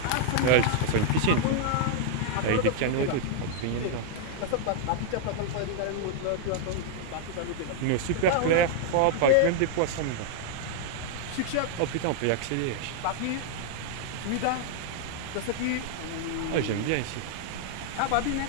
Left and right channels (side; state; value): both; different; correlation 0.00